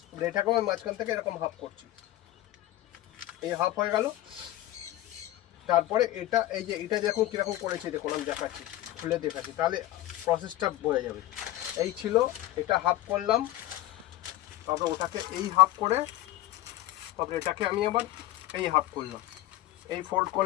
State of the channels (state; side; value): quieter; right; 15.2 dB